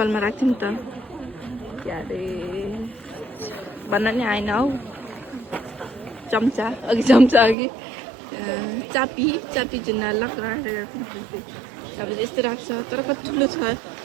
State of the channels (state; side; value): drops out; left; at 7.6 s